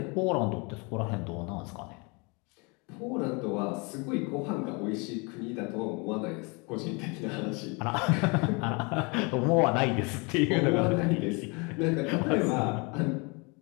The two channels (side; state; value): right; quieter; 30.1 dB